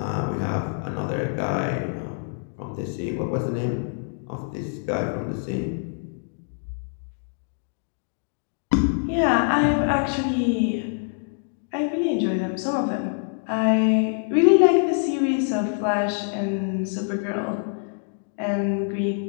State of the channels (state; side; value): silent; right; digital silence